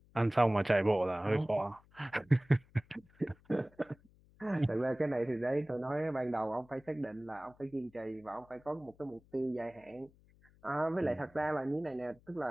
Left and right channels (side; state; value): left; noise; hum, 28 dB below the sound